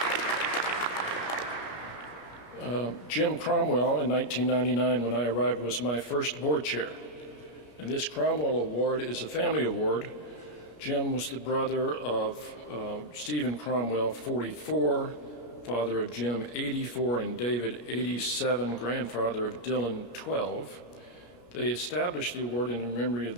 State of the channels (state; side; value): late; right; 17 ms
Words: Jim Cromwell, in 1999, when I arrived, was my first board chair. And this Cromwell Award is a family award. Jim was the brother of Stephen Cromwell, 44, father of Jim, 84, and David, 87, grandfather of Dylan, 12. They established the award in memory of